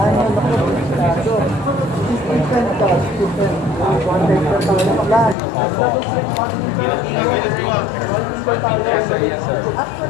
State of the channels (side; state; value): right; drops out; at 5.4 s